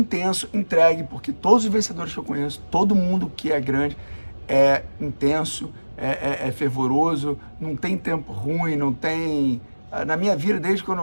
entregue, porque todos os vencedores que eu conheço, todo mundo que é grande é intenso, é fervoroso, não tem tempo ruim, não tem... Na minha vida, desde quando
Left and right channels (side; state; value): both; inverted; correlation -1.00